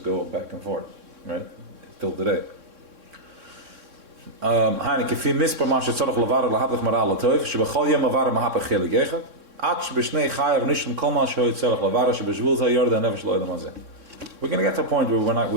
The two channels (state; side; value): late; left; 3.6 ms